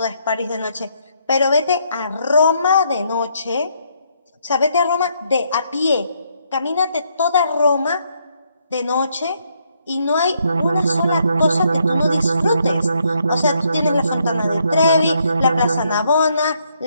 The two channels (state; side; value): inverted; both; correlation -0.73